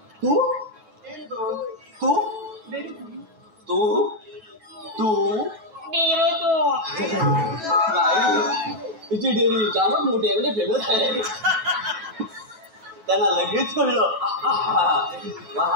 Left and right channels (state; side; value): late; left; 9.2 ms